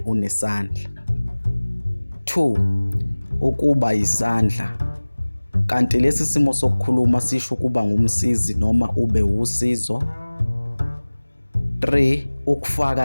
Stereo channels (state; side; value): inverted; both; correlation -1.00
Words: unesandla. 2. Ukuba yisandla. Kanti lesi simo sokukhuluma sisho ukuba ngumsizi noma ube usizo. 3.